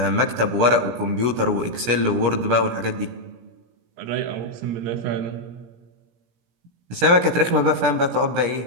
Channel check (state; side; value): late; left; 17 ms